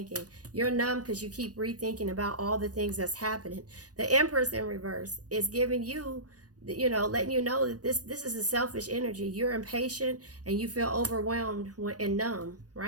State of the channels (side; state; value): left; late; 0.68 ms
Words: You're numb because you keep rethinking about all the things that's happening. The Empress in reverse is giving you, letting you know that this is a selfish energy. You're impatient and you feel overwhelmed and numb,